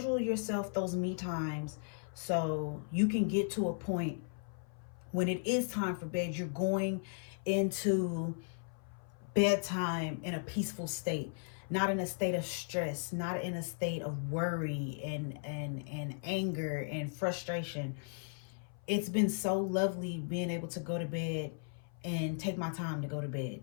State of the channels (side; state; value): right; silent; 54 dB below the other